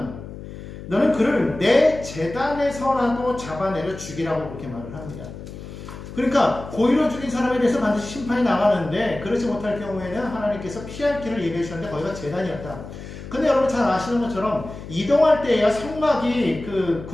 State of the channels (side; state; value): left; noise; hum, 12 dB below the sound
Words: 너는 그를 내 제단에서라도 잡아내려 죽이라고 그렇게 말을 합니다. 그러니까 고의로 죽인 사람에 대해서 반드시 심판이 나가는데 그렇지 못할 경우에는 하나님께서 피할 길을 예비해 주셨는데 거기가 제단이었다. 근데 여러분 잘 아시는 것처럼 이동할 때야 성막이 그